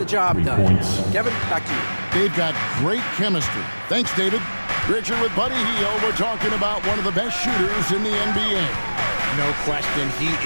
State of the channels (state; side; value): inverted; both; correlation -1.00